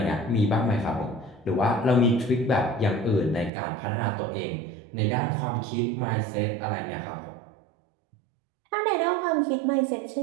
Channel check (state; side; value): drops out; left; at 3.5 s